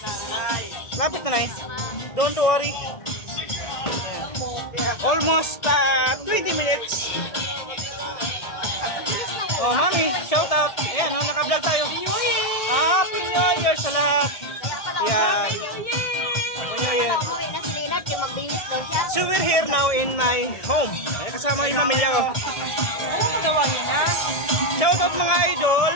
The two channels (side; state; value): right; late; 1.7 ms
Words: Lapit na eh. Don't worry. Yan. Almost 20 minutes. Oh, mami, shout out. Ayan, naka-vlog tayo. Happy New Year sa lahat. Yan. Happy New Year. So we're here now in my home. Ay, kasama yung pamilya ko. Ano magawa niya na? Shout out mga idol.